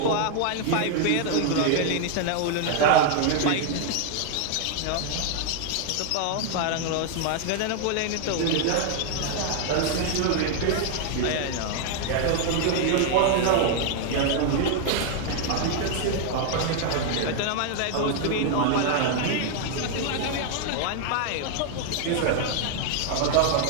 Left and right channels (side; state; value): both; different; correlation 0.00